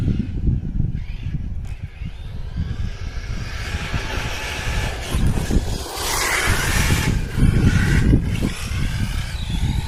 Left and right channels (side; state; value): both; identical; correlation 1.00